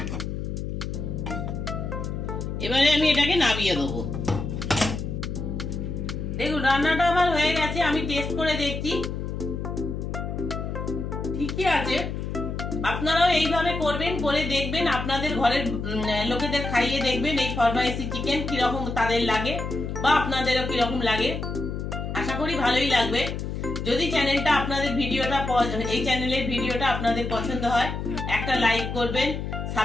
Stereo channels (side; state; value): left; noise; hum, 4 dB below the sound